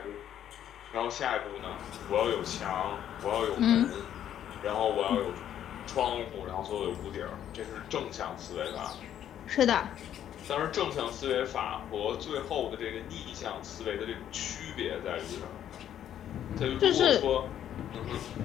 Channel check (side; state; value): right; quieter; 10.5 dB